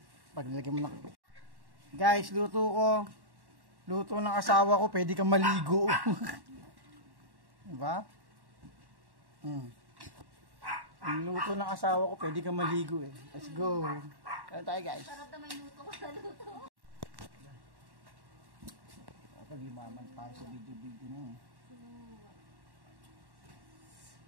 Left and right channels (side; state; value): left; late; 1.1 ms